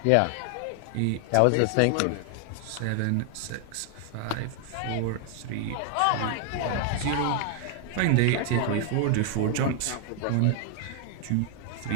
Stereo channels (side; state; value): both; different; correlation 0.00